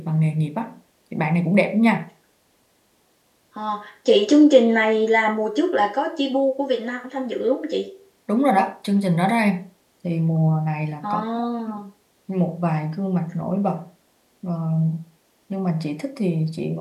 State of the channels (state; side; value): identical; both; correlation 1.00